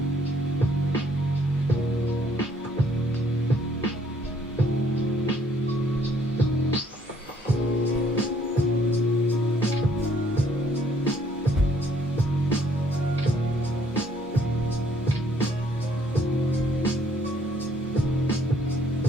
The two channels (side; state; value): both; normal; correlation 0.64